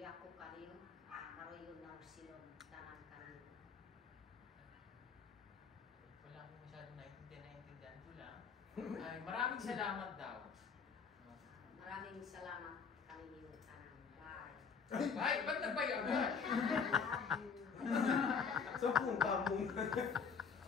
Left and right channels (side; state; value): right; quieter; 5.9 dB